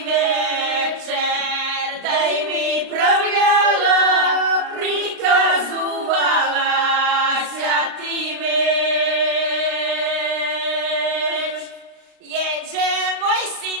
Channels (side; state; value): left; late; 35 ms